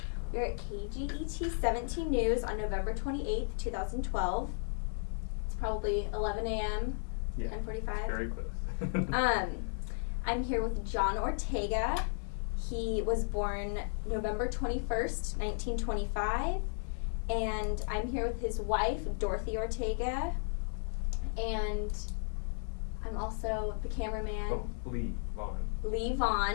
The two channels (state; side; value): silent; right; digital silence